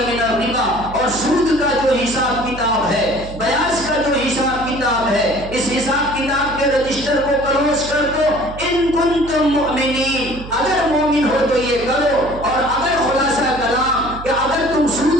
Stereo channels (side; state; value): right; noise; hum, 13 dB below the sound